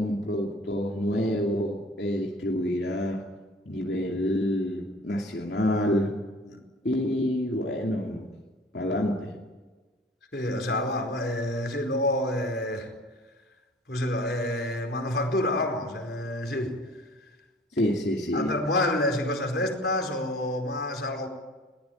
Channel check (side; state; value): both; normal; correlation 0.47